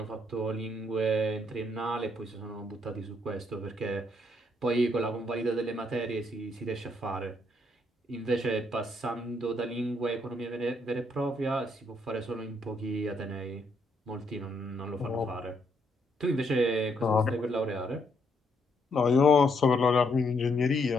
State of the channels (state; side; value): normal; both; correlation 0.74